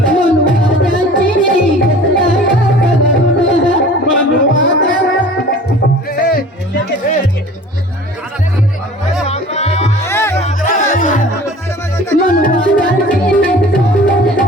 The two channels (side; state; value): both; normal; correlation 0.44